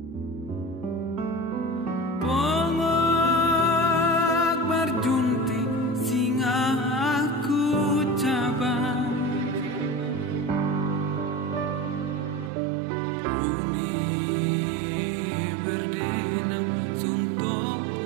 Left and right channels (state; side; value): drops out; left; at 12.5 s